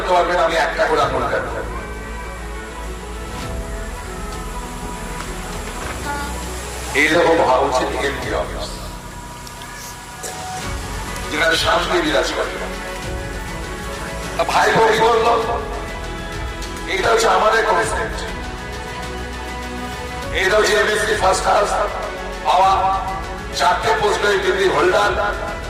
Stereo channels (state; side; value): identical; both; correlation 1.00